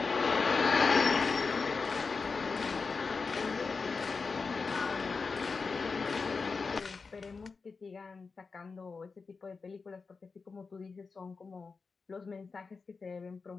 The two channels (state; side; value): quieter; right; 4.6 dB